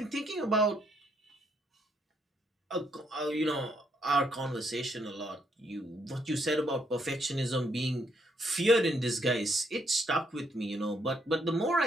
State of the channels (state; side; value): normal; both; correlation 0.73